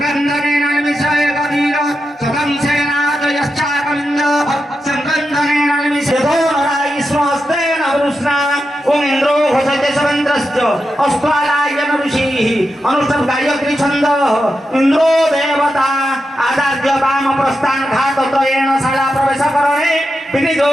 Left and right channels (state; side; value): normal; both; correlation 0.88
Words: निमिषय कवीर सदं सेनादयश्चाकलिन्द संगन्धनेन निमिषयो नरायिस्वस्तेन वृष्णा ओम इन्द्रो घोषते सवन्द्रश्च अस्त्वालायन ऋषिः अनुष्ठं गायत्री छन्दः इन्द्रो देवता आदार्य वाम प्रस्थान घातत्रयेण शाला प्रवेशकरणे